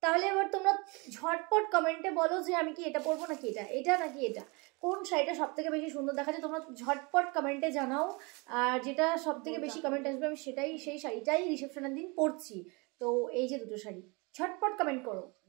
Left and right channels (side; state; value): left; quieter; 28.6 dB